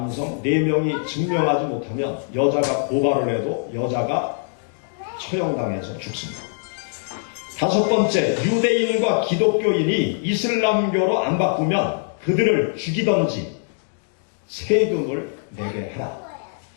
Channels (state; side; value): silent; right; digital silence